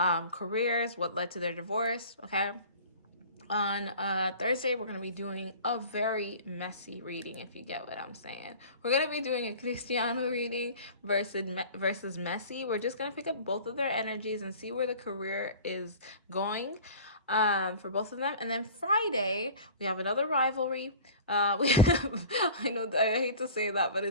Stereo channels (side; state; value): both; inverted; correlation -0.41